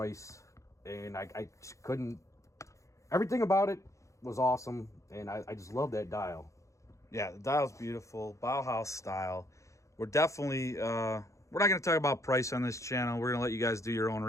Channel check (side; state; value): right; late; 0.15 ms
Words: and I just couldn't. Everything about it was awesome, and I just love that dial. Yeah, the dial's beautiful, Bauhaus style. We're definitely we're not going to talk about price on this channel. We're going to let you guys do your own